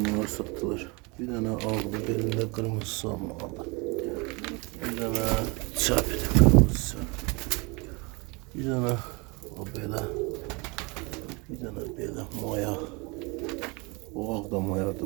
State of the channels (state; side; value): quieter; left; 28.4 dB